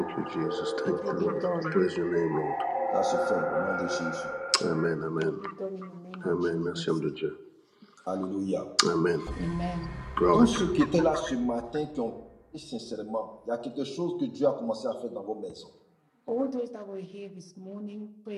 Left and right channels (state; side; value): identical; both; correlation 1.00